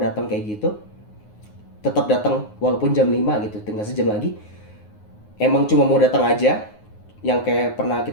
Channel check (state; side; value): late; right; 9.5 ms